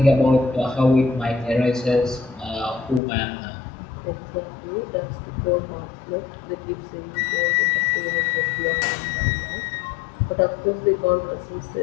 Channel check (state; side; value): drops out; right; at 3.0 s